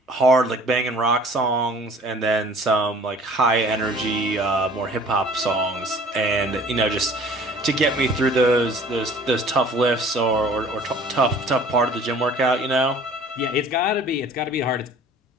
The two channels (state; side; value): normal; both; correlation 0.50